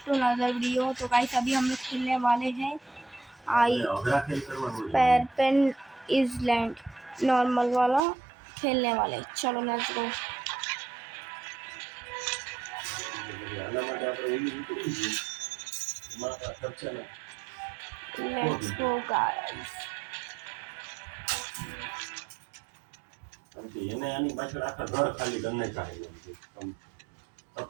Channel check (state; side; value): drops out; left; at 8.0 s